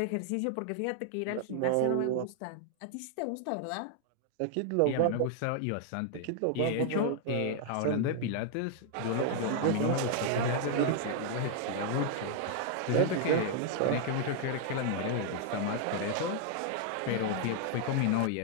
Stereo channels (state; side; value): different; both; correlation 0.00